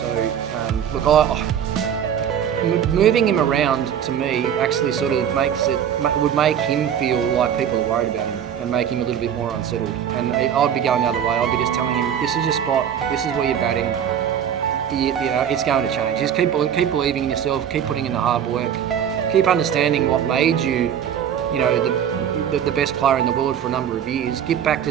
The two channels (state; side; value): quieter; left; 9.0 dB